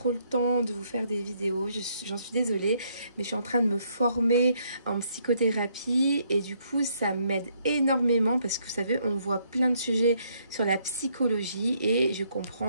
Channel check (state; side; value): inverted; both; correlation -0.70